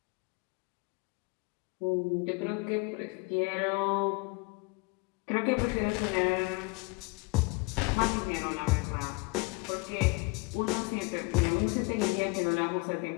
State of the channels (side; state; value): right; quieter; 26.6 dB